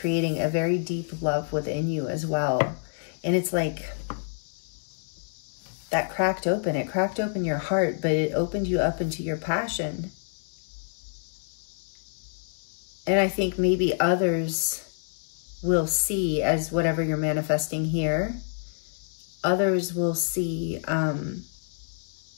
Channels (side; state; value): right; silent; digital silence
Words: a very deep love within you as well. And it's like that cracked open. It cracked open your heart, but it opened you up into your passion. And I think maybe others will see, as whatever you're manifesting here, others will see